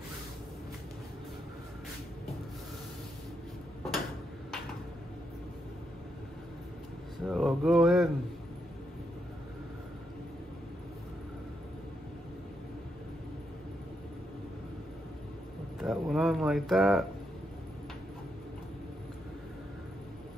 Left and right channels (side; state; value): both; normal; correlation 0.81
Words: So I'll go ahead and put that one on like that.